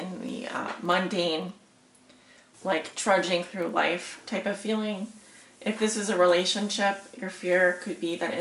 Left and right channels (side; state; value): both; identical; correlation 1.00